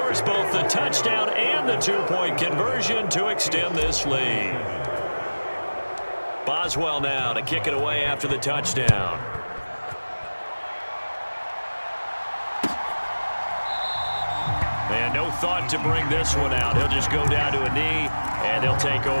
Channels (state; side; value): inverted; both; correlation -1.00